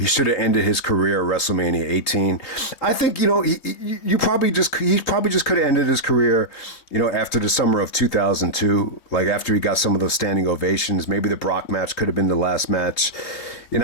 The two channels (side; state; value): right; late; 3.6 ms